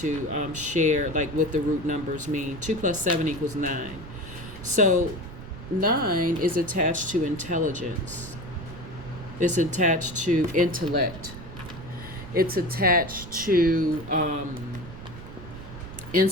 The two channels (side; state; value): right; noise; rumble, 13 dB below the sound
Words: share like what the root numbers mean. 2 plus 7 equals 9. So 9 is attached to intelligence. It's attached to intellect. It's attached to